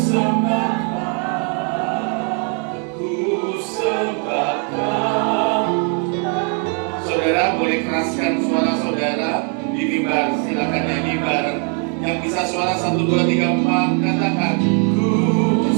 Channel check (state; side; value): quieter; left; 39.8 dB